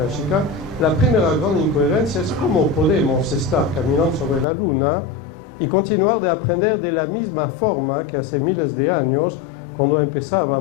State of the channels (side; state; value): right; drops out; at 4.5 s